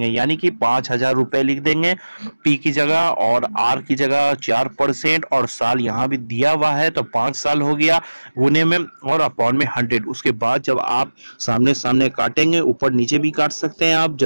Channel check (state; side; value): inverted; both; correlation -1.00